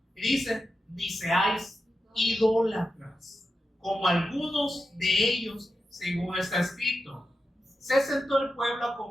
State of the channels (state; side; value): normal; both; correlation 0.89